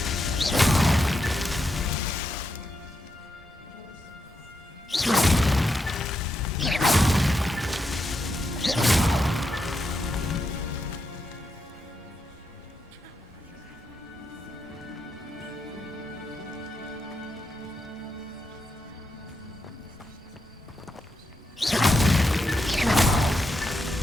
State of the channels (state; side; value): normal; both; correlation 0.84